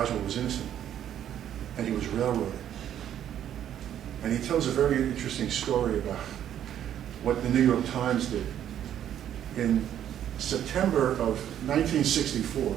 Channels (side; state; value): left; quieter; 10.5 dB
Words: was innocent, and he was railroaded. And he tells a very interesting story about what the New York Times did. In September of 1964,